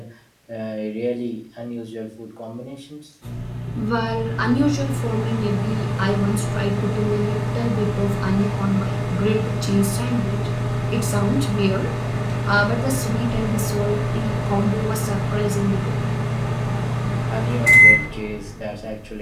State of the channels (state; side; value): identical; both; correlation 1.00